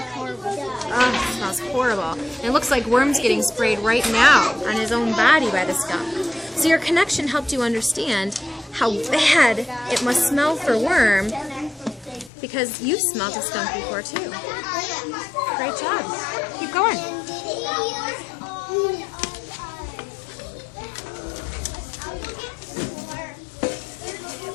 car with it. Oh, it smells horrible. And it looks like Worm's getting sprayed right now on his own body by the skunk. So your connection helped you understand how bad it must smell for Worm because you smelled a skunk before too. Great job. Keep going.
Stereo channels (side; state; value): right; drops out; at 12.3 s